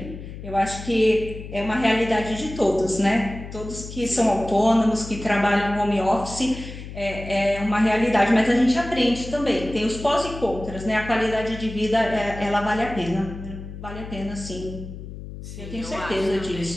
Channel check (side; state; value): left; noise; hum, 11 dB below the sound